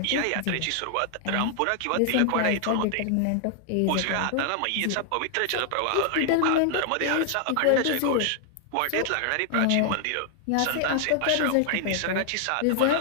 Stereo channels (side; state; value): both; different; correlation 0.00